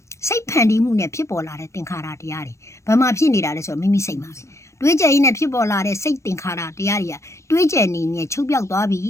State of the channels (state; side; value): late; right; 0.14 ms